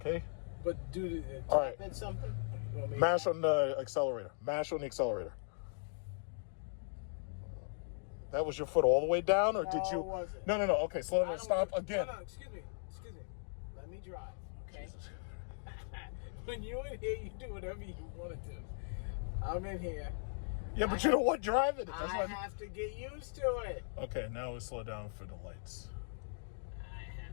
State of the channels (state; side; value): silent; right; digital silence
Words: But do the All right. at something. You want me to- Mash on the accelerator. Mash on the accelerator. That was your foot all the way down, or did No, you? it wasn't. No. Okay, slow I down. don't Stop want- again. No, excuse me. Let me drive, okay? When you're in here, you do whatever you want to do. I'm in here. Yeah, but you don't want driving it. That's I why. have to get used to it. Okay, now we slow down for the lights. I